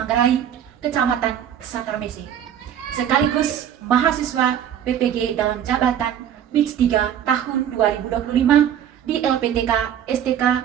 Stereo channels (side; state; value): left; quieter; 9.8 dB